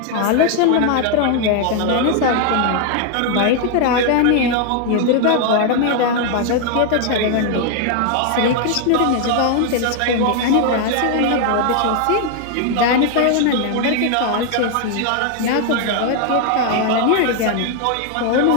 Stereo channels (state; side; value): different; both; correlation 0.00